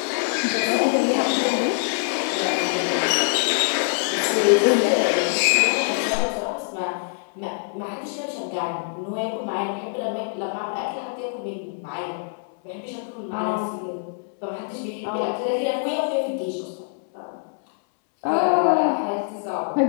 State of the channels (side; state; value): right; silent; 63 dB below the other